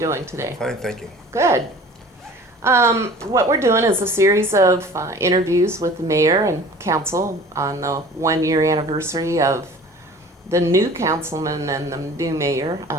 today? Fine, thank you. Good. What we're doing is a series of interviews with the mayor and council on the 1-year anniversary of the new councilman and the new mayor.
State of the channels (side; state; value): both; normal; correlation 0.45